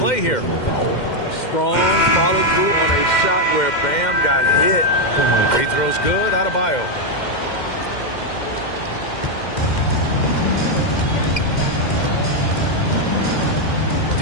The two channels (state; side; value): late; right; 2.1 ms